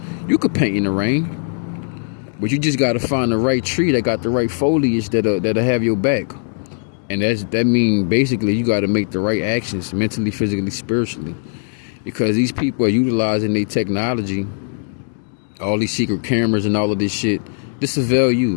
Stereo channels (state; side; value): silent; right; 66 dB below the other